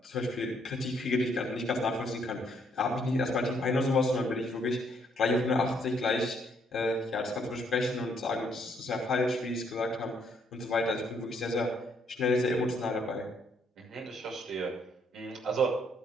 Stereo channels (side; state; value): both; normal; correlation 0.70